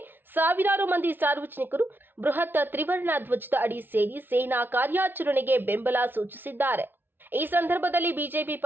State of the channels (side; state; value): left; late; 0.097 ms